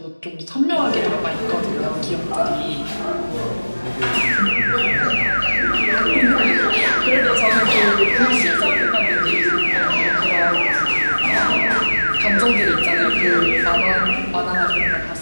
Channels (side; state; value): both; inverted; correlation -1.00